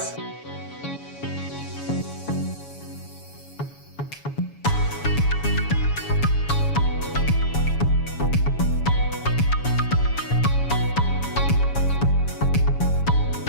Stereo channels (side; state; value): right; late; 7.1 ms